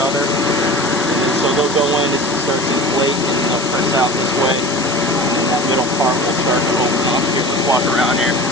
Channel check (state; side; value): noise; left; hiss, 8 dB below the sound